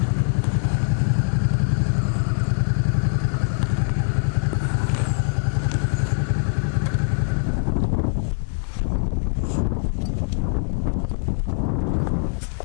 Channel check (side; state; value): right; silent; digital silence